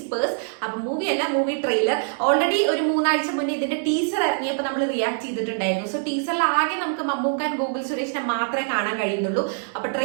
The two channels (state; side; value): silent; left; digital silence